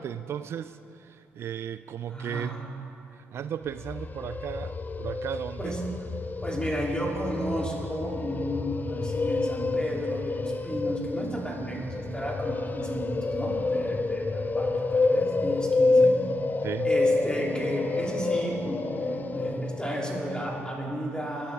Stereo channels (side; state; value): both; normal; correlation 0.86